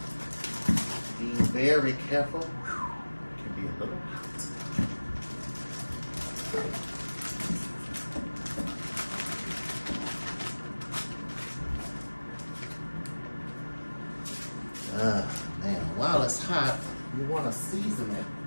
Be very careful. It can be a little hot. Man, while it's hot, you want to season it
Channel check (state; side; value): inverted; both; correlation -1.00